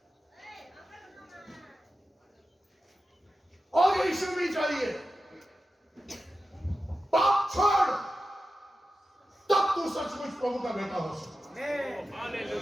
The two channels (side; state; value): both; normal; correlation 0.92